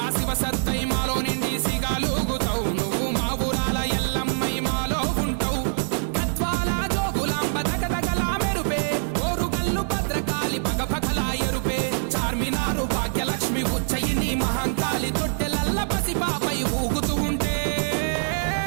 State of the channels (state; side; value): silent; left; 62 dB below the other